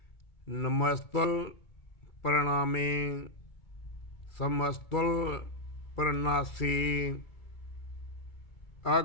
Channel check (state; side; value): late; right; 2.4 ms